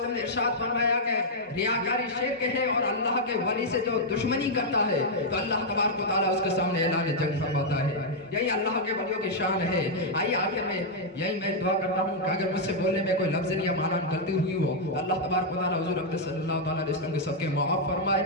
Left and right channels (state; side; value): normal; both; correlation -0.04